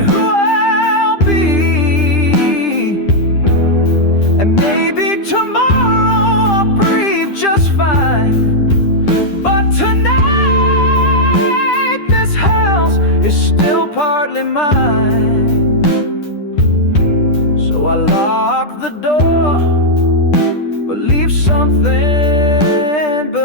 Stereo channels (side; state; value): right; late; 10 ms